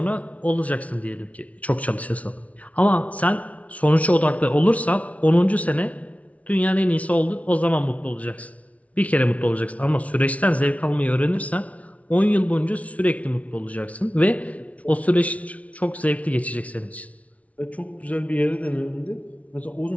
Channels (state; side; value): late; right; 0.067 ms